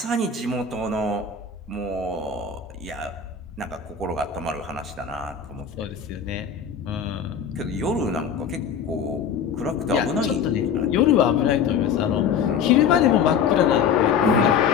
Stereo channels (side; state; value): right; quieter; 6.7 dB